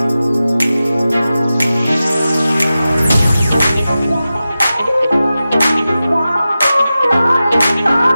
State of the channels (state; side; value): inverted; both; correlation -0.94